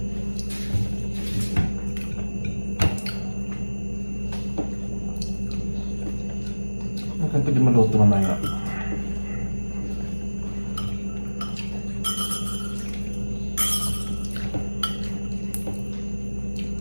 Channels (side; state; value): both; inverted; correlation -1.00